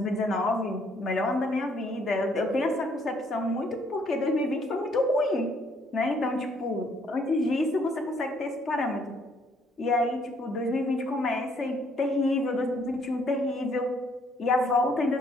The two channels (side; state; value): both; normal; correlation 0.66